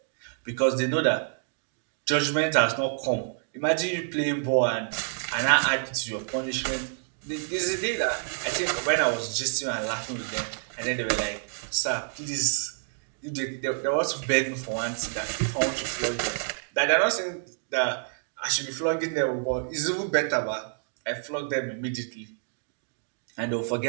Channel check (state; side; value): silent; left; digital silence